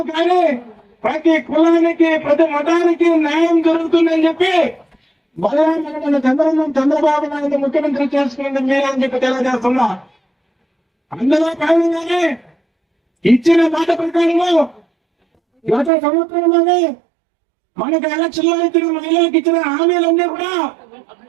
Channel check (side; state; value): left; drops out; at 15.9 s